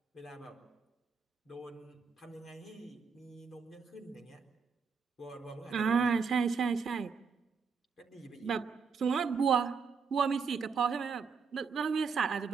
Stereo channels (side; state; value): left; quieter; 5.6 dB